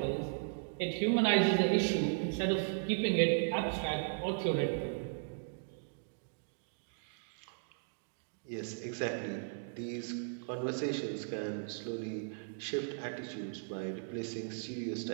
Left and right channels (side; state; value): left; silent; digital silence